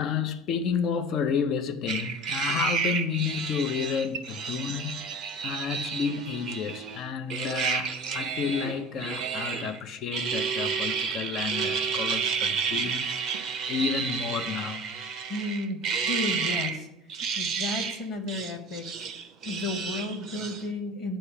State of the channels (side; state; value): both; normal; correlation 0.38